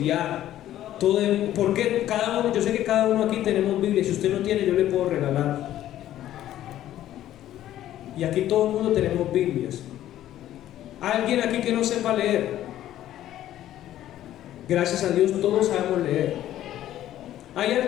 Porque cada uno, yo sé que cada uno aquí tenemos Biblia. Si usted no tiene, yo le puedo regalar. Y aquí todo el mundo tenemos Biblias. ¿Hay alguien aquí que no sepa leer? Gracias a Dios todos sabemos leer. ¿Hay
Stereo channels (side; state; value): right; quieter; 12.7 dB